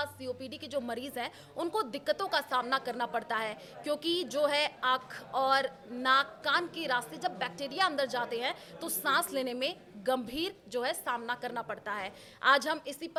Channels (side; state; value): both; identical; correlation 1.00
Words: सीओपीडी के जो मरीज़ हैं उनको दिक्कतों का सामना करना पड़ता है, क्योंकि जो है आँख और नाक कान के रास्ते जब बैक्टीरिया अंदर जाते हैं तो सांस लेने में गंभीर जो है सामना करना पड़ता है। आज हम इसी